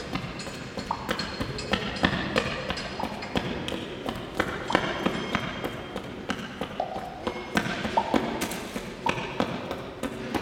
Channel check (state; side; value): identical; both; correlation 1.00